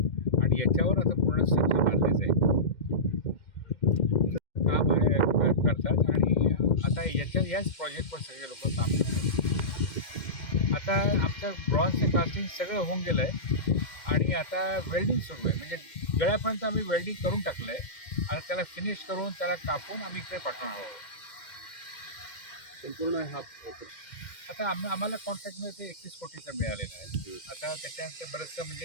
आणि याच्यावर आता पूर्ण स्ट्रक्चर बांधले जाईल. काम आहे करतात आणि आता याच प्रोजेक्टवर सगळे लोक काम करतात. आता आमचं ब्रॉन्झचं कास्टिंग सगळं होऊन गेलं आहे आणि आता वेल्डिंग सुरू आहे. म्हणजे गळ्यापर्यंत आम्ही वेल्डिंग करून टाकलं आहे आणि त्याला फिनिश करून त्याला कापून आम्ही इकडे पाठवणार आहोत. संपूर्ण हा आता आम्हाला कॉन्ट्रॅक्टमध्ये ते 31 कोटीचा मिळालेला आहे. आता त्याच्यानंतर बरंचसं म्हणजे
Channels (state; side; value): late; right; 2.1 ms